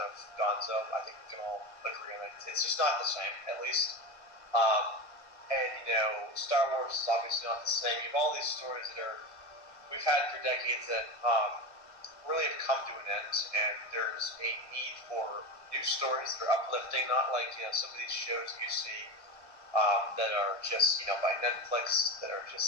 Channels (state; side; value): late; right; 1.5 ms